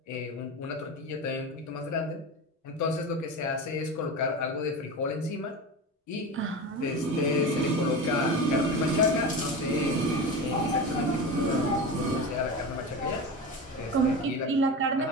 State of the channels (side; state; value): both; normal; correlation 0.26